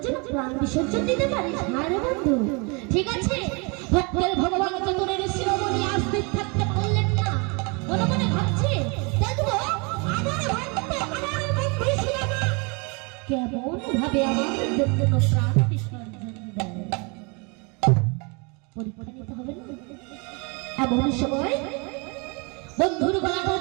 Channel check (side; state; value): left; quieter; 31.3 dB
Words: জন্য প্রাণ বিসর্জন দিতে পারিস? হ্যাঁ রে বন্ধু, ঠিক আছে। ভক্তের ভগবান চতুরের শিরোমণি আস্তিক থাকতে পারলেন না, মনে মনে ভাবছে দেখবো আমার ভক্ত, আমার বন্ধু শিলামা কেমন ভাবে আমার জন্য প্রাণ বিসর্জন দেয়। পরীক্ষা নিতে হবে না? এমন সময় বন্ধুর গলাটা